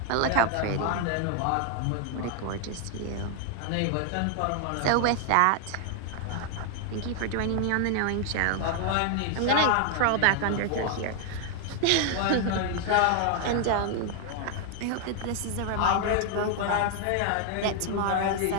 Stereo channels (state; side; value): different; both; correlation 0.00